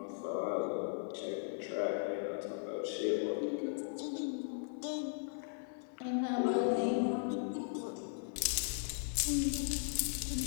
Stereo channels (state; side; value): silent; right; 53 dB below the other